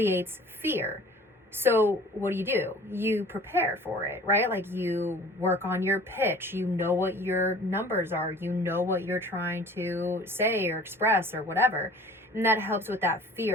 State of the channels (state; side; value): normal; both; correlation 0.46